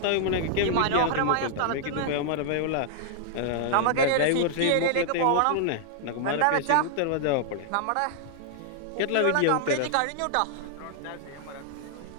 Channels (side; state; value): both; different; correlation -0.01